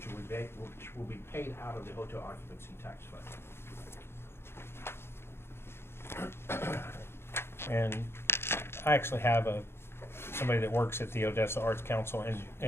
will be paid out of the hotel occupancy tax fund. And I actually have somebody that works at the Odessa Arts Council,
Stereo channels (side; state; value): right; late; 0.12 ms